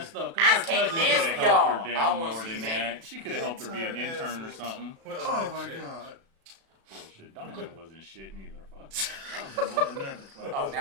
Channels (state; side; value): late; left; 36 ms